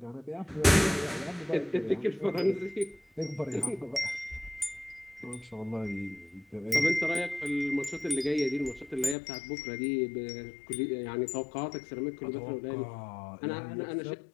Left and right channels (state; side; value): drops out; right; at 9.2 s